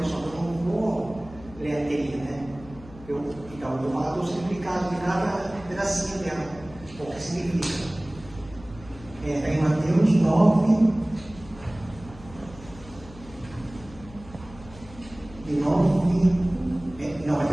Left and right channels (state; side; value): noise; left; hum, 19 dB below the sound